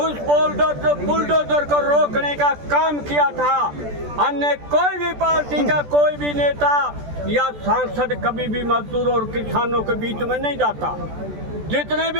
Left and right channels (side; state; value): left; late; 14 ms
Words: बुलडोजर को रोकने का काम किया था। अन्य कोई भी पार्टी का कोई भी नेता या सांसद कभी भी मजदूरों और किसानों के बीच में नहीं जाता। जितने